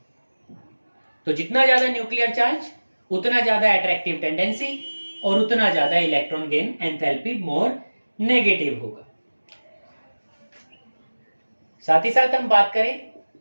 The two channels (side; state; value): both; inverted; correlation -1.00